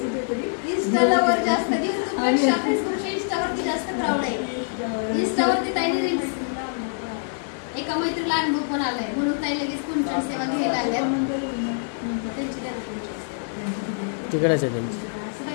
इंस्टा लवर जास्त. युट्यूबपेक्षा फेसबुकच्या इंस्टावरती जास्त क्राऊड आहे. इंस्टावरती ताईने रील्स. एका मैत्रीला अनुभव पण आलाय म्हणून ताई लगेच कुंचन सेवा घ्यायला आल्या. तिकडेच आहे त्यांची.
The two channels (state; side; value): silent; right; digital silence